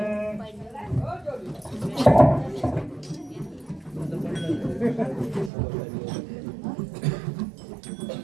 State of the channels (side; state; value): left; drops out; at 5.5 s